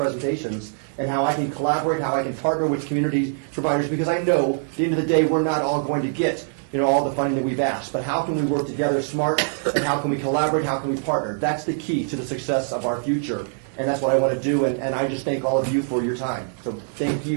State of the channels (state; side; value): silent; left; 63 dB below the other